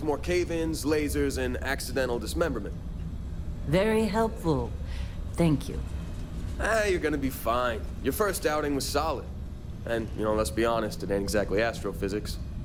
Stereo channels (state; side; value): identical; both; correlation 1.00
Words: more cave-ins, lasers, and accidental dismemberment. Very helpful. Thank you. You're gonna be fine. Your first outing was solid. And, let's be honest, it ain't exactly astrophysics.